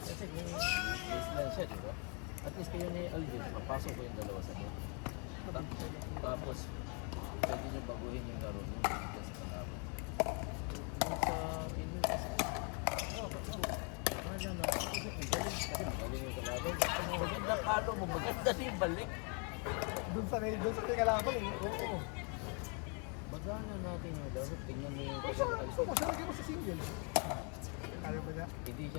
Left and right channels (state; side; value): quieter; right; 37.0 dB